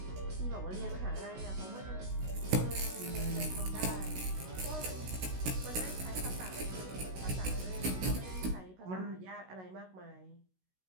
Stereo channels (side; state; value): left; late; 16 ms